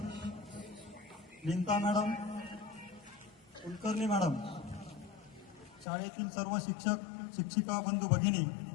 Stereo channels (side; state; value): right; drops out; at 5.9 s